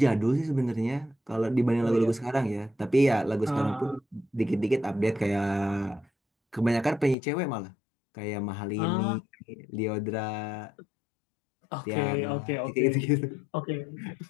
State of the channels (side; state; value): right; drops out; at 7.2 s